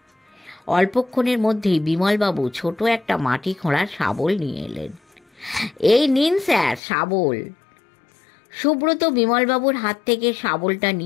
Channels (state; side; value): drops out; right; at 6.8 s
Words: অল্পক্ষণের মধ্যেই বিমলবাবু ছোট একটা মাটি খোঁড়ার শাবল নিয়ে এলেন। এই নিন স্যার শাবল। সুব্রত বিমলবাবুর হাত থেকে শাবলটা